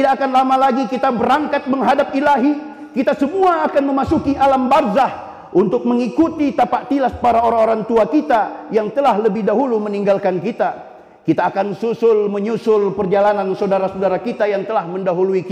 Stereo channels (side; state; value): both; identical; correlation 1.00